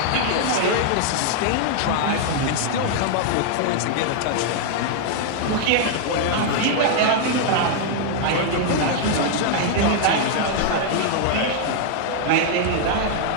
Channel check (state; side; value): different; both; correlation 0.00